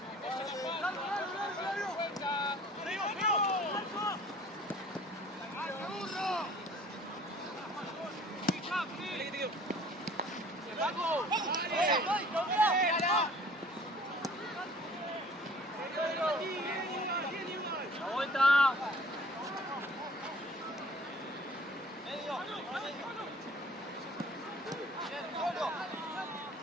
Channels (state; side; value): normal; both; correlation 0.51